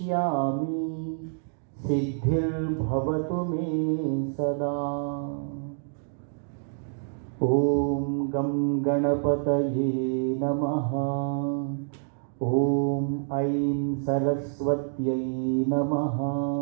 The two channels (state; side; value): silent; left; digital silence